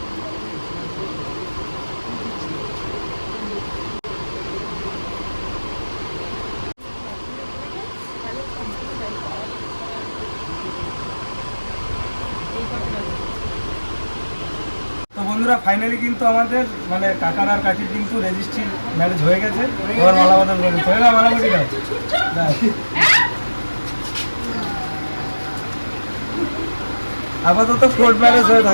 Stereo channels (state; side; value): inverted; both; correlation -1.00